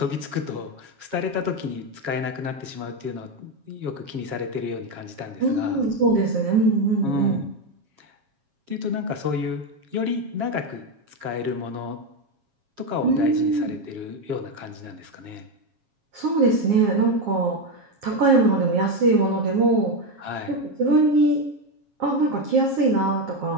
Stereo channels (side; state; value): left; late; 7.3 ms